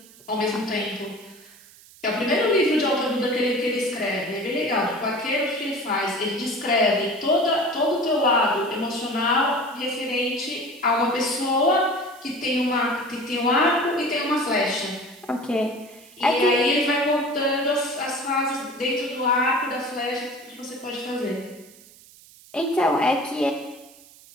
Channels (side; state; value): right; noise; hiss, 23 dB below the sound